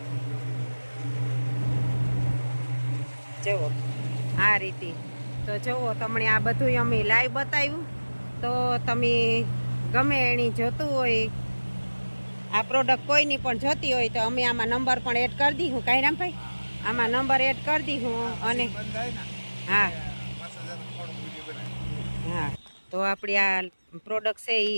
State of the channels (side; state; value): both; inverted; correlation -1.00